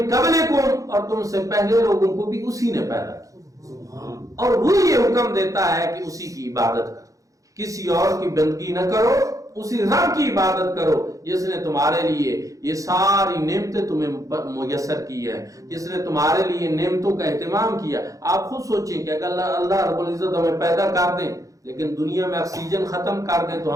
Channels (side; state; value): left; late; 0.16 ms